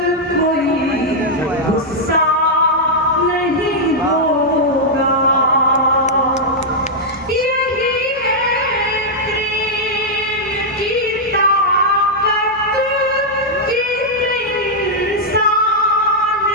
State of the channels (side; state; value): both; normal; correlation -0.05